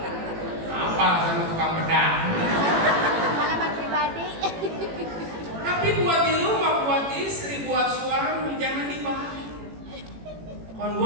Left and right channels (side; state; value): left; late; 18 ms